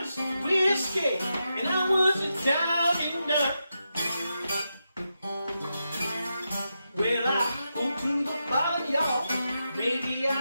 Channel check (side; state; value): both; inverted; correlation -0.87